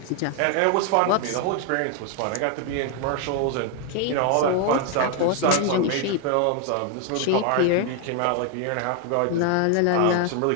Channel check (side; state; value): both; different; correlation 0.01